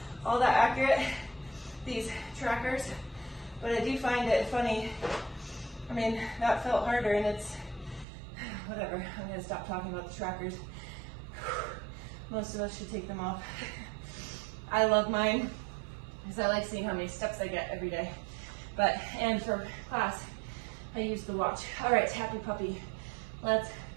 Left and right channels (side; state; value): left; drops out; at 8.1 s